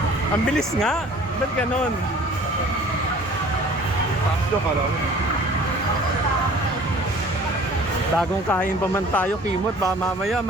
Ang bilis nga. Ba't ganon? Takso ka lang. Bagong kain pa man tayo, Kimot. Baka mamaya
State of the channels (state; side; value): normal; both; correlation 0.49